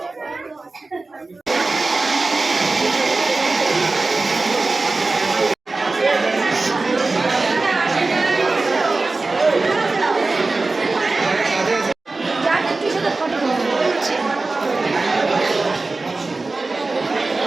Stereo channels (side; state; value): left; quieter; 3.5 dB